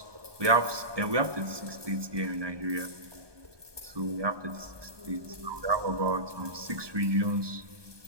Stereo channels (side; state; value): left; late; 1.2 ms